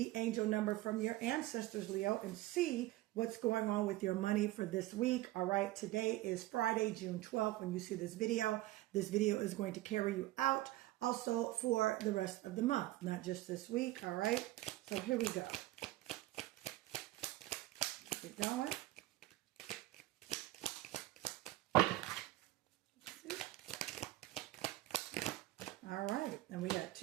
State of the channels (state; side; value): quieter; left; 17.3 dB